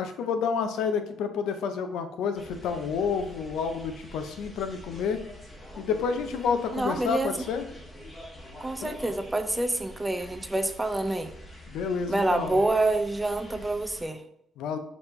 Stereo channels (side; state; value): both; normal; correlation 0.72